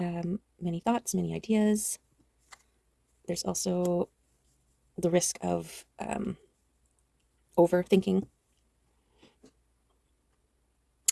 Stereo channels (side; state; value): both; identical; correlation 1.00